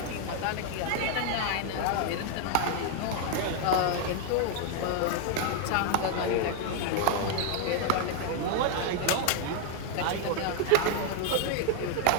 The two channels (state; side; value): different; both; correlation 0.00